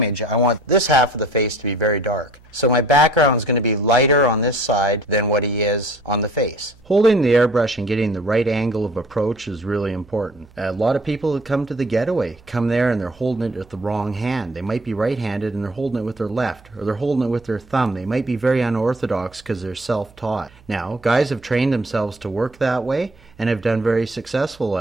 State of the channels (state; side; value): noise; right; hum, 27 dB below the sound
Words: I want this half of the face to be very dark. So my background is going to be lighter on this side than what he is on the face. Holding the airbrush and getting the right angle of approach is really important. A lot of people that come to the getaway come there and they're holding it with the wrong hand. They might be right-handed and they're holding it with their left, or they're holding it with their thumb. They might be very unorthodox because they're self-taught. Now, guys have trained themselves to work that way and have done very successful